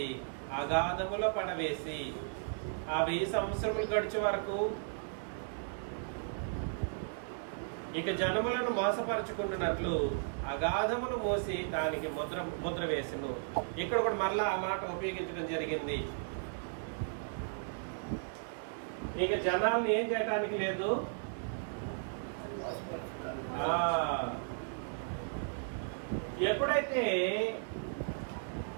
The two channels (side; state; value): left; silent; digital silence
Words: అగాధములో పడవేసి ఆ 1000 సంవత్సరములు గడిచే వరకు ఇక జనములను మోసపరచుకున్నట్లు అగాధమును మోసి దానికి ముద్ర వేసెను. ఇక్కడ కూడా మరలా ఆ మాట ఉపయోగించడం జరిగింది. ఇక జనాలను ఏం చేయటానికి లేదు. ఎప్పుడైతే